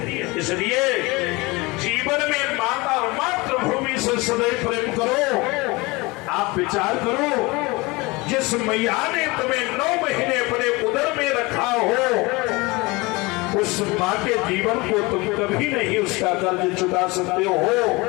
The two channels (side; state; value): right; quieter; 24.0 dB